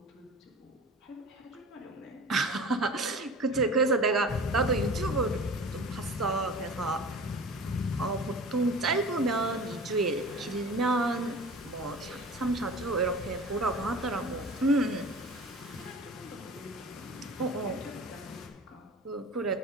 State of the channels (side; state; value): both; normal; correlation 0.39